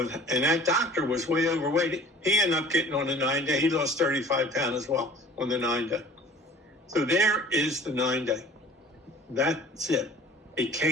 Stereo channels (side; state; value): both; normal; correlation 0.47